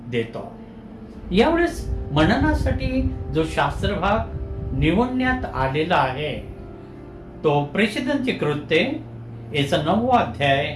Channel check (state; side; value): identical; both; correlation 1.00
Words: देतो. यावेळेस मननासाठी जो शास्त्रभाग निवडण्यात आलेला आहे तो प्रेषितांची कृत्ये याचा 9वा अध्याय